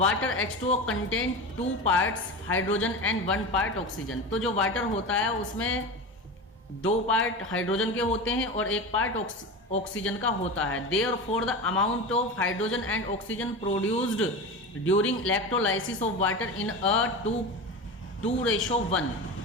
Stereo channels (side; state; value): both; normal; correlation 0.26